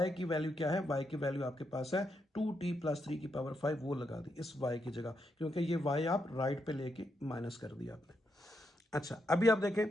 की वैल्यू क्या है, y की वैल्यू आपके पास है 2t प्लस 3 की पावर 5, वो लगा दी इस y की जगह, क्योंकि ये y आप राइट पे लेके माइनस कर दिया आपने। अच्छा, अभी आप देखें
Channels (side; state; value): both; normal; correlation 0.81